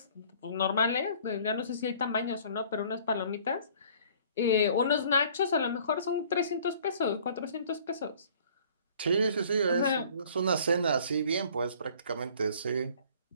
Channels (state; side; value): inverted; both; correlation -0.54